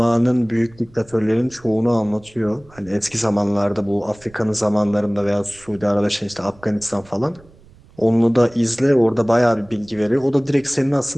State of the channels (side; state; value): right; noise; rumble, 26 dB below the sound